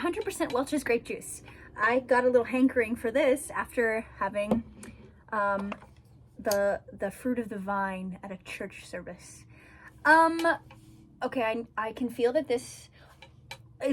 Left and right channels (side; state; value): both; identical; correlation 1.00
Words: Welch's grape juice. I got a little hankering for this after having the fruit of the vine at a church service. Okay, I can feel that this